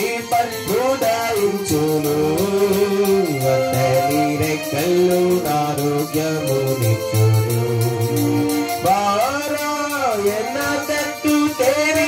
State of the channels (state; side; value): identical; both; correlation 1.00